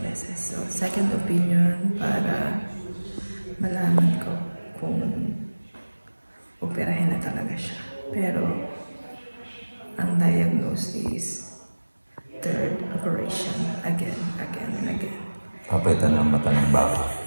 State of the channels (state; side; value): inverted; both; correlation -1.00